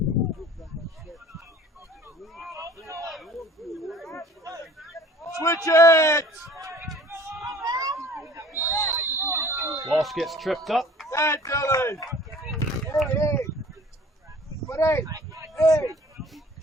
Switch it. Walsh gets tripped up. That Dylan. Hey. But hey.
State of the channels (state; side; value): normal; both; correlation 0.49